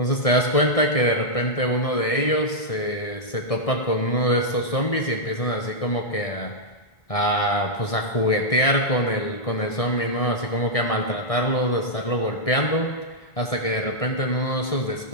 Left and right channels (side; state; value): right; late; 1.6 ms